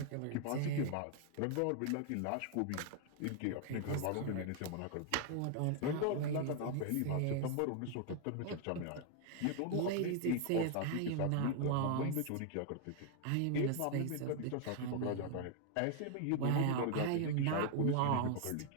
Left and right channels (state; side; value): different; both; correlation 0.00